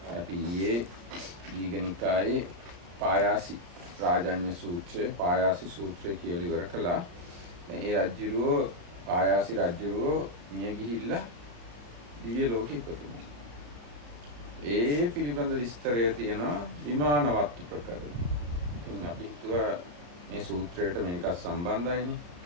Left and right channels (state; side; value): late; left; 34 ms